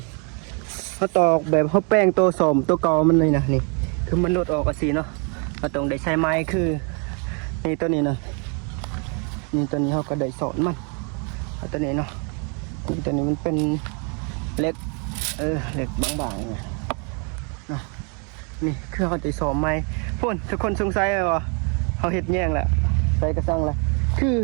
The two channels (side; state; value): left; quieter; 36.2 dB